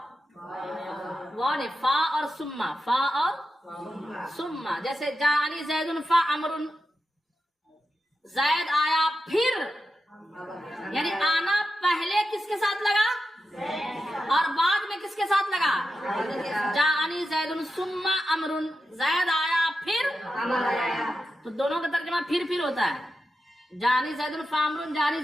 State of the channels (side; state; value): both; normal; correlation 0.90